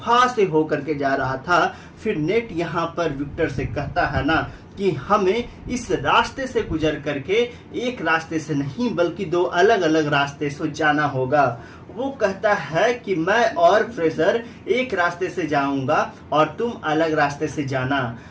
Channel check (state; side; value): identical; both; correlation 1.00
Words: से होकर के जा रहा था। फिर नेट यहाँ पर विक्टर से कहता है ना कि हमें इस रास्ते से गुजर करके एक रास्ते से नहीं बल्कि दो अलग अलग रास्ते से जाना होगा। वो कहता है कि मैं और फ्रेशर एक रास्ते से जाऊंगा और तुम अलग रास्ते से जाना।